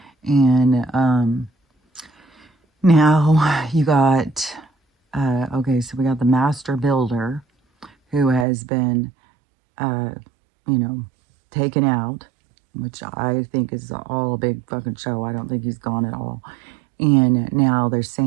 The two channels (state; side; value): drops out; left; at 8.5 s